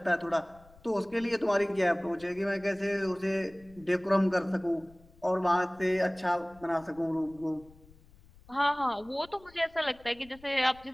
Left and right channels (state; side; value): noise; left; rumble, 25 dB below the sound